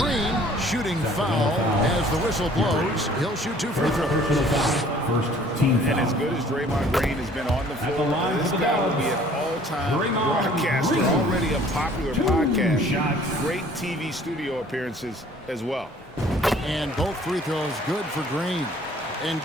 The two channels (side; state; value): both; normal; correlation 0.55